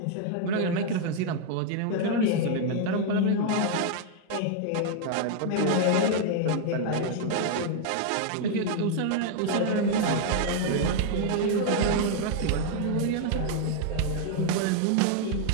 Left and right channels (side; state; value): both; different; correlation 0.00